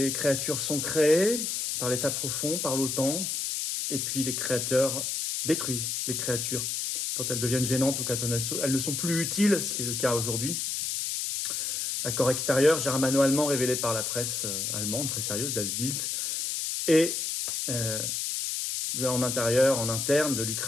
créatures sont créées par l'État profond, par l'OTAN, et puis les créateurs détruisent les créatures quand elles deviennent gênantes ou quand elles ne sont plus utiles, ce qui est le cas aujourd'hui. Accord extérieur germano-allemand révélé par la presse allemande, très sérieuse, Das Bild, et en intérieur, en interne de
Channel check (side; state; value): left; noise; hiss, 1 dB below the sound